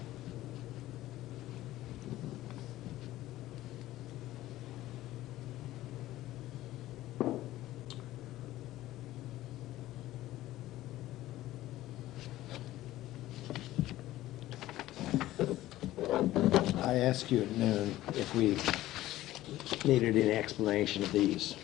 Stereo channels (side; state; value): right; quieter; 15.4 dB